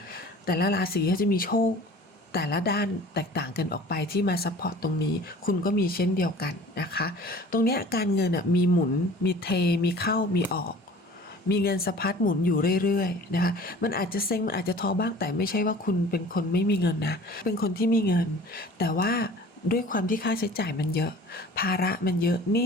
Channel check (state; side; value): normal; both; correlation 0.45